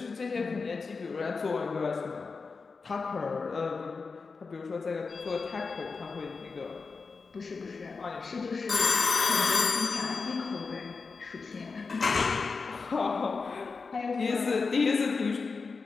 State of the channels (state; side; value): quieter; right; 4.6 dB